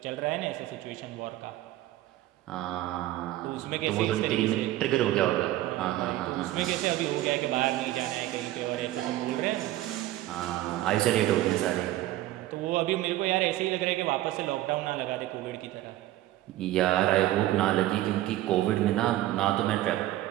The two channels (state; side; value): quieter; left; 15.2 dB